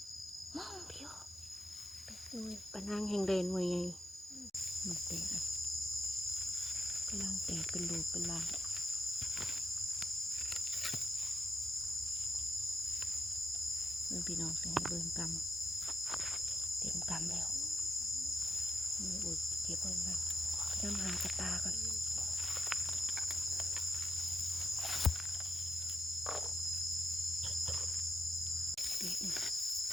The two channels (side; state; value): both; normal; correlation 0.84